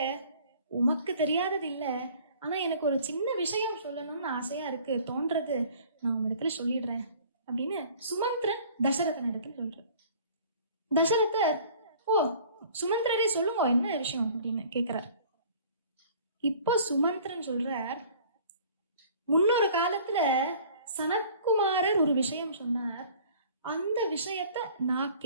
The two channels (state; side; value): inverted; both; correlation -0.51